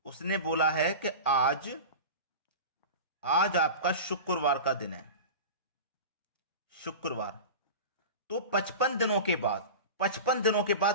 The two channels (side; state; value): both; inverted; correlation -0.30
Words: उसने बोला है कि आज आपका शुक्रवार का दिन है, शुक्रवार। तो 55 दिनों के बाद, 55 दिनों के